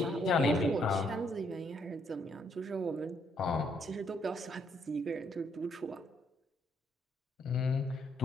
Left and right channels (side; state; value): both; normal; correlation 0.71